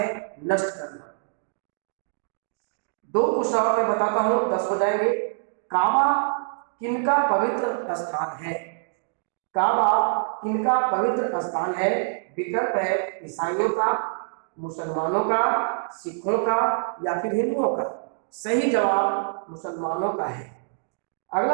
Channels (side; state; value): left; silent; digital silence